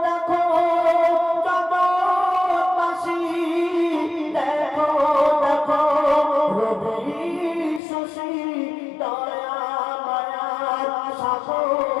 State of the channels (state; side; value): drops out; right; at 7.8 s